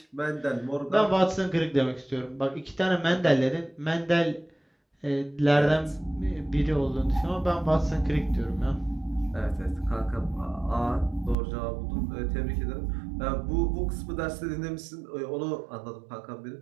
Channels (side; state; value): left; drops out; at 11.4 s